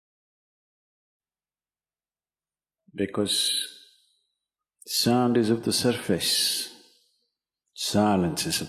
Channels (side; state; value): both; identical; correlation 1.00